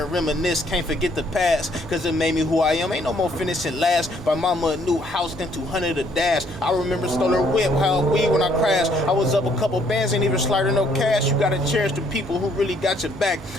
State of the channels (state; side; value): normal; both; correlation 0.66